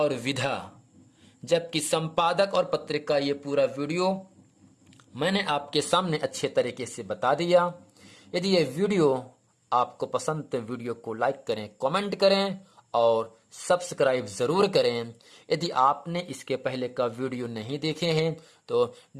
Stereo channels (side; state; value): both; identical; correlation 1.00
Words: विधा, जबकि संपादक और पत्रिका, ये पूरा वीडियो मैंने आपके सामने अच्छे तरीके से बता दिया। यदि ये वीडियो आपको पसंद तो वीडियो को लाइक करें, कमेंट करें और सब्सक्राइब जरूर करें। यदि आपने इसके पहले का वीडियो नहीं देखे हैं तो